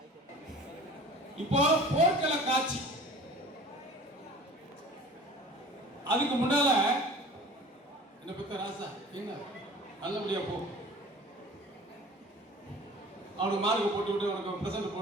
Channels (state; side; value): normal; both; correlation 0.44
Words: இப்போ போர்க்கள காட்சி. அதுக்கு முன்னால என்ன பத்த ராசா என்ன நல்லபடியா போ. அவனுக்கு மார்க் போட்டு விட்டு அவனுக்கு பிரசன்ட்